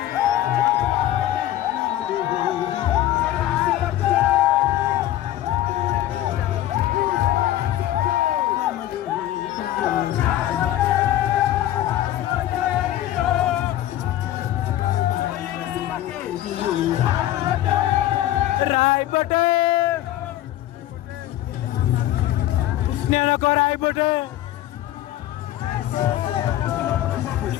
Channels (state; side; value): quieter; right; 13.4 dB